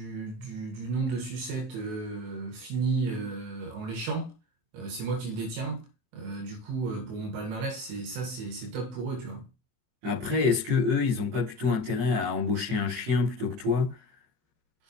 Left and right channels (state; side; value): late; left; 23 ms